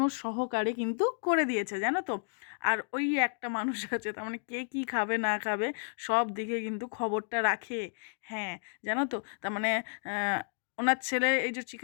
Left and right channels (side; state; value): right; silent; digital silence